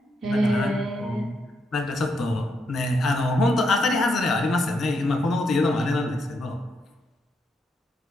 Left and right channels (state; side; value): normal; both; correlation 0.79